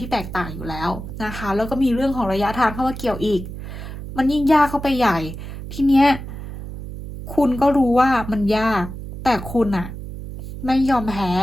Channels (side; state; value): right; noise; hum, 10 dB below the sound